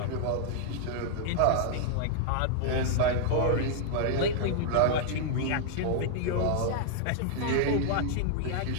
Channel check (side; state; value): both; different; correlation 0.00